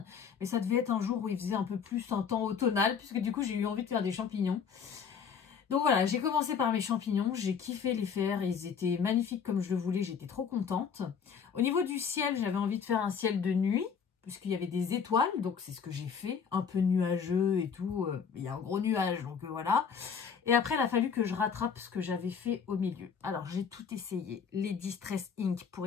mais ça devait être un jour où il faisait un peu plus un temps automnal, puisque du coup j'ai eu envie de faire des champignons. Donc voilà, j'ai commencé par mes champignons, j'ai kiffé les faire, ils étaient magnifiques comme je le voulais, j'étais trop contente. Au niveau du ciel, j'avais envie de faire un ciel de nuit, puisqu'il y avait des étoiles, donc c'est ce que j'ai fait, un peu nuageux et tout, il y a un gros nuage, donc voilà. Et après, il a fallu que je rattrape ce que j'avais fait au milieu. Alors, j'ai tout essayé, les Distress Ink pour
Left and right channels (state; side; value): quieter; right; 6.7 dB